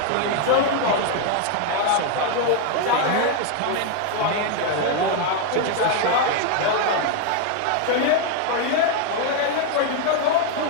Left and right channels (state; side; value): different; both; correlation 0.01